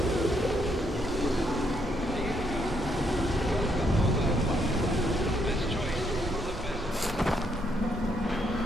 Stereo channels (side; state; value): both; normal; correlation 0.74